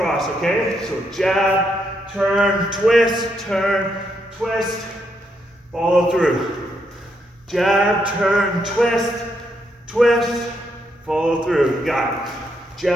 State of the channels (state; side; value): normal; both; correlation 0.78